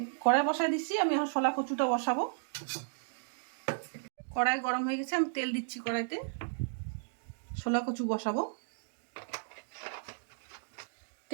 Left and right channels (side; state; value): left; silent; digital silence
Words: কড়াই বসাই দিচ্ছি। আমি এখন ছোলা কচুটা বসাবো। কড়াই গরম হয়ে গেছে, আমি তেল দিচ্ছি কড়াইতে। ছোলা কচু বসাবো।